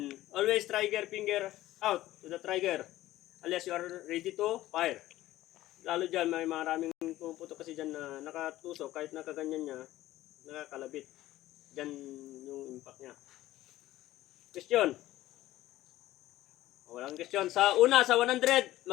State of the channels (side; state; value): right; quieter; 15.4 dB